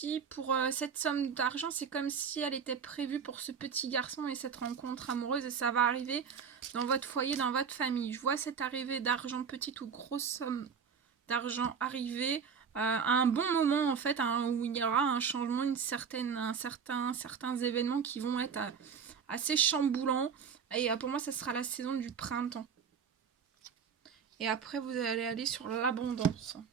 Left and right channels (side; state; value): left; quieter; 6.6 dB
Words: pour cette somme d'argent, c'est comme si elle était prévue pour ce petit garçon et cette rencontre amoureuse et ça va arriver dans votre foyer, dans votre famille. Je vois cette arrivée d'argent, petite ou grosse somme d'argent arriver à un bon moment en fait, où il y aura un changement, certains événements qui vont être assez chamboulants. Et pour moi, ça sera la saison du printemps. Et après, vous allez aller sur l'abondance.